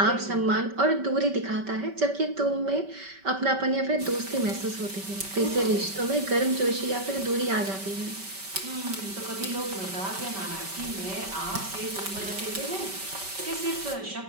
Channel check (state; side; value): late; left; 5.2 ms